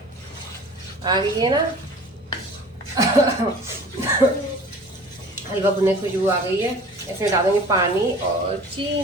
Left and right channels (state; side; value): normal; both; correlation 0.44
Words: आ गई है ना हलवा भुनने की खुशबू आ गई है। इसमें डालेंगे पानी और